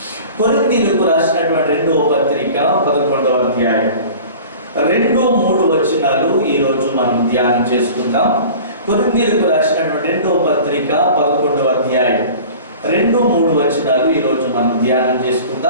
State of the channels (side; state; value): both; inverted; correlation -0.41